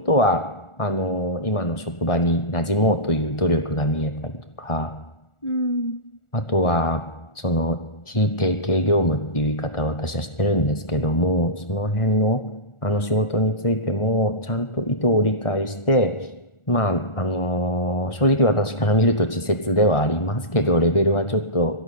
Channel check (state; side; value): late; right; 1.4 ms